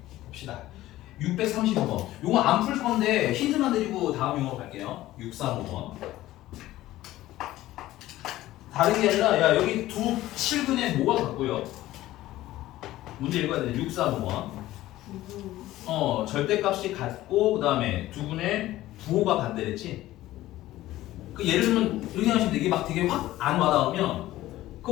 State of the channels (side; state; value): right; quieter; 15.6 dB